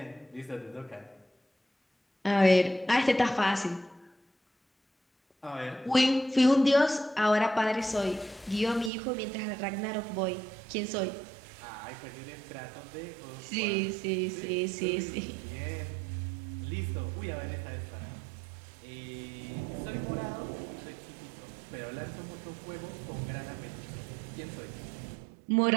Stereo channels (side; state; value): left; drops out; at 8.9 s